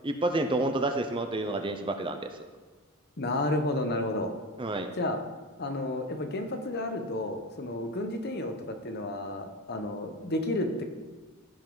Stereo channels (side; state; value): both; normal; correlation 0.28